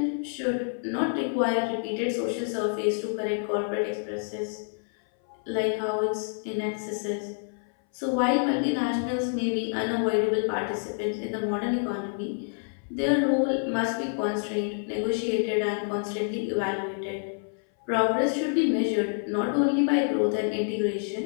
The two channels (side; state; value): right; silent; 60 dB below the other